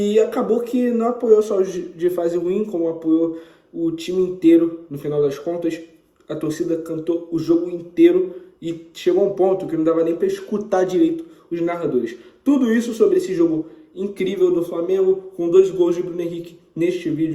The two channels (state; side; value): identical; both; correlation 1.00